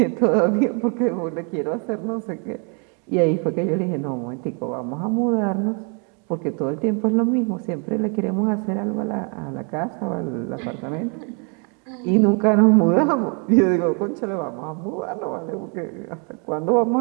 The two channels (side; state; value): left; quieter; 37.1 dB